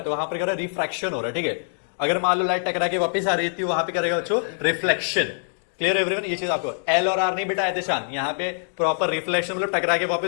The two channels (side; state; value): right; silent; digital silence